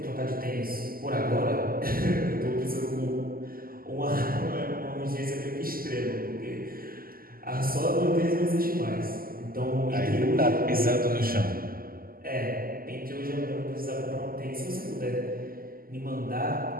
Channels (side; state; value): left; late; 0.42 ms